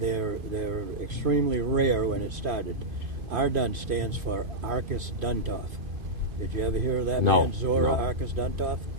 extremely rare when it started. Ardun stands for Arcus Duntov. Did you ever hear of that man, Zora Arcus Duntov?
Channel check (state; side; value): late; left; 2.5 ms